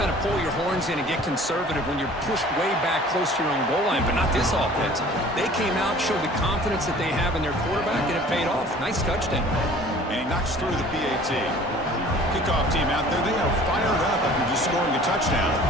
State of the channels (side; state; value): both; normal; correlation 0.48